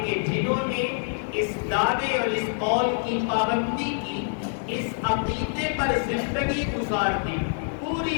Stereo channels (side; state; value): right; silent; digital silence